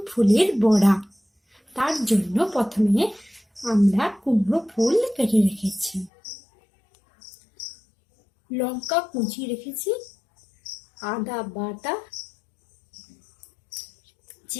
ফুলের বড়া। তার জন্য প্রথমে আমরা কুমড়ো ফুল কেটে রেখেছি, লঙ্কা কুচি রেখেছি, আদা বাটা,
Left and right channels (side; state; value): right; drops out; at 6.1 s